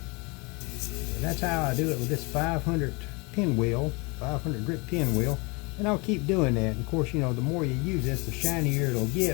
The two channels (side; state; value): right; quieter; 28.4 dB